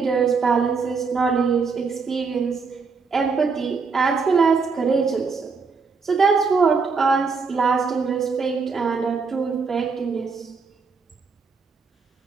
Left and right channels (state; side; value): quieter; left; 4.9 dB